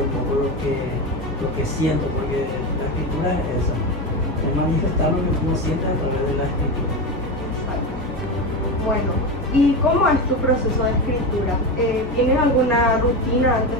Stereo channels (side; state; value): both; normal; correlation 0.18